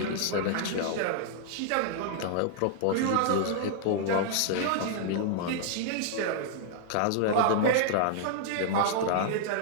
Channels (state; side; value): different; both; correlation -0.01